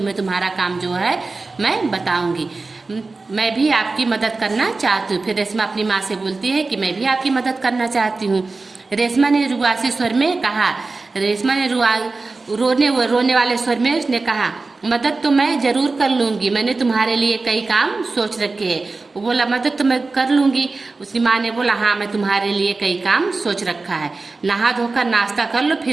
तुम्हारा काम जो है मैं बताऊंगी। मैं भी आपकी मदद करना चाहती हूँ। फिर रेशमा अपनी माँ से बोलती है कि मैं भी आपकी मदद करना चाहती हूँ। रेशमा ने रुआसी स्वर में कहा। रेशमा ने रोने वाले स्वर में उसने कहा, मदद तो मैं जरूर कर लूंगी, मैंने तुम्हारे लिए कई काम सोच रखे हैं। वो बोला, मदद तो मैं कर लूंगी। उसकी माँ ने बोला, हाँ मैं तुम्हारे लिए कई काम सोच रखा है, नहा धोकर नाश्ता कर लो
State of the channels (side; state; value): left; quieter; 3.7 dB